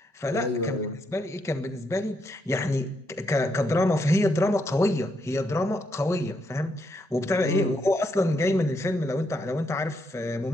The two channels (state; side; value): normal; both; correlation 0.78